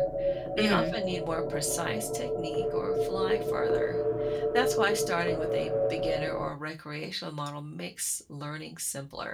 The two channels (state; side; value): identical; both; correlation 1.00